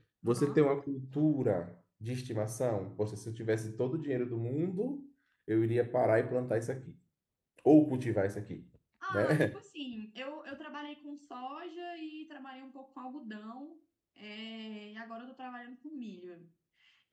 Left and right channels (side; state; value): both; identical; correlation 1.00